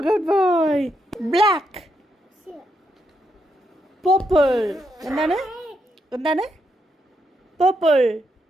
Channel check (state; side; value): normal; both; correlation 0.80